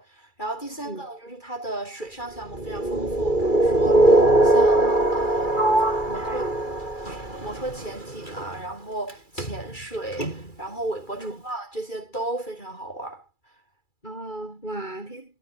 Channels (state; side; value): late; right; 2.3 ms